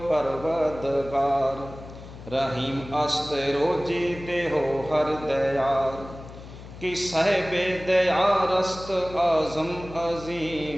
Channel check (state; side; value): noise; left; hum, 15 dB below the sound